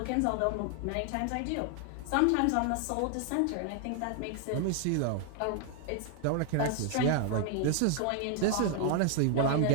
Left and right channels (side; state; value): both; different; correlation 0.00